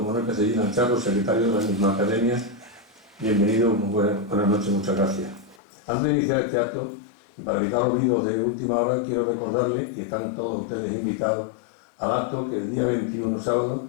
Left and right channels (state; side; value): drops out; right; at 5.6 s